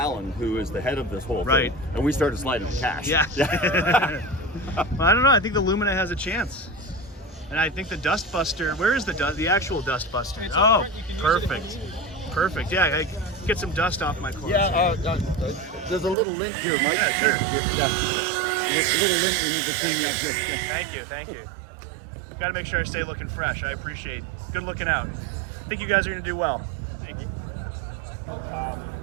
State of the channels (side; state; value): left; drops out; at 16.2 s